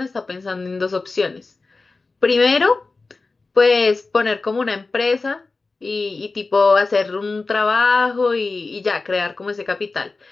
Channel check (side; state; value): right; quieter; 3.8 dB